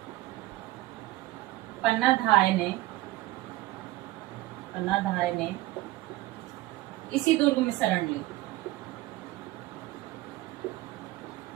पन्नाधाय ने पन्नाधाय ने इसी दुर्ग में शरण ली।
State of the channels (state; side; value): quieter; left; 18.0 dB